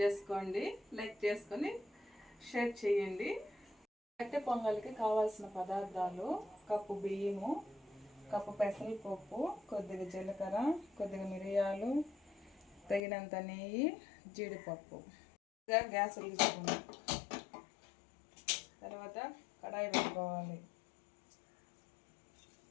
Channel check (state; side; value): drops out; right; at 13.0 s